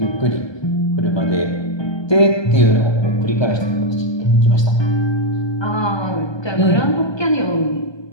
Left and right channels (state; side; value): late; right; 1.2 ms